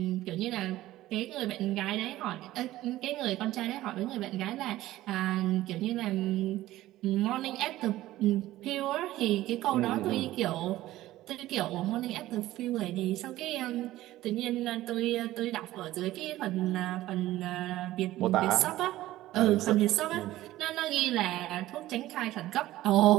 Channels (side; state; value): left; quieter; 15.6 dB